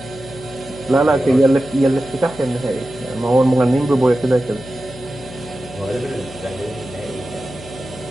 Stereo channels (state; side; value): noise; left; hum, 16 dB below the sound